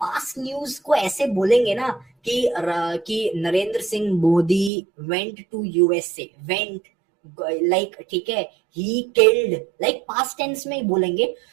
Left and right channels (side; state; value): left; drops out; at 4.7 s